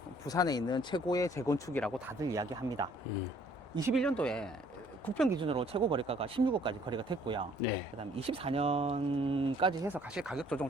부산에 있는 최고의 재건축이라고 다들 이야기합니다. 21년도에 국평 기준으로 최고 거래가가 16억까지 거래가 됐고요. 네. 그다음 24년까지 해서 사실 가격 조정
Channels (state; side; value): normal; both; correlation 0.60